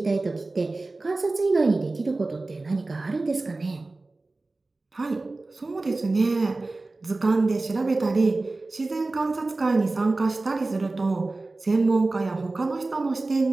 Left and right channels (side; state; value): left; quieter; 3.2 dB